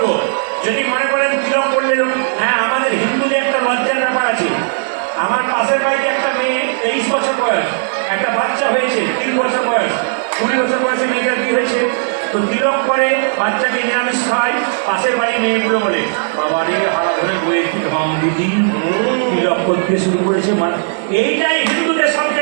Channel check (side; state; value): left; silent; digital silence